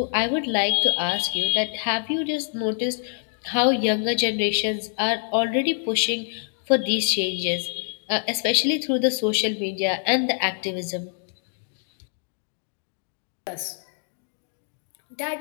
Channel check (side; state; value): right; silent; 60 dB below the other